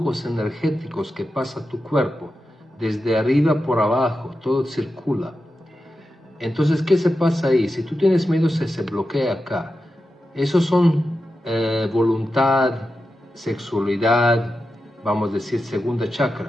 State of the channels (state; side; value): normal; both; correlation 0.90